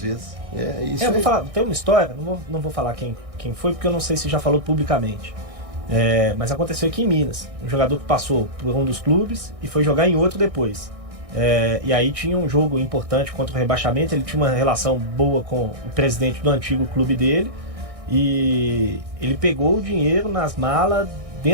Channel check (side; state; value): left; late; 1.6 ms